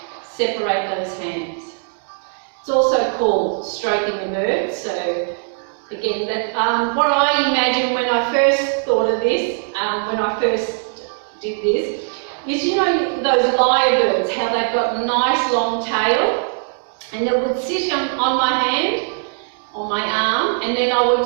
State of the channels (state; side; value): silent; left; 60 dB below the other